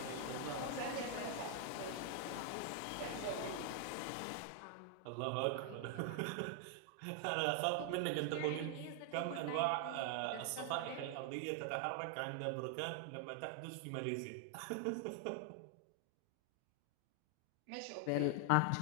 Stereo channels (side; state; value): both; different; correlation 0.00